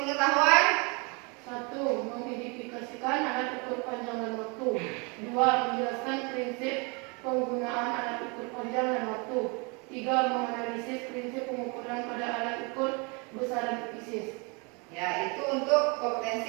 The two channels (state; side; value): quieter; left; 31.3 dB